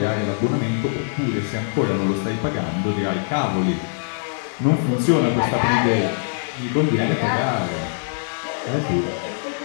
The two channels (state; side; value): silent; right; 57 dB below the other